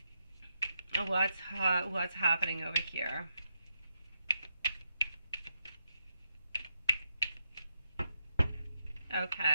What's happening over here?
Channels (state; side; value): inverted; both; correlation -0.83